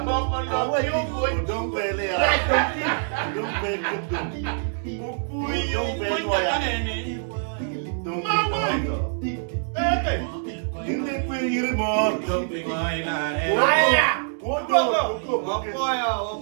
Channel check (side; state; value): left; silent; digital silence